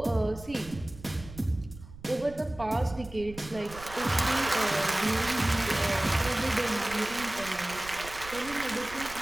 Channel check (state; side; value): noise; right; rumble, 16 dB below the sound